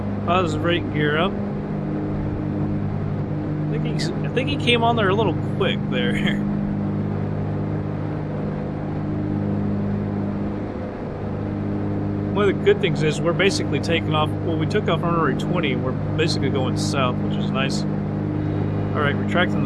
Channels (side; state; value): both; identical; correlation 1.00